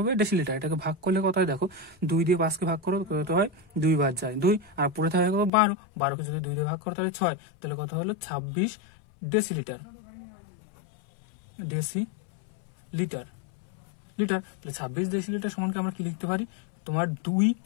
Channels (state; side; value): drops out; right; at 5.5 s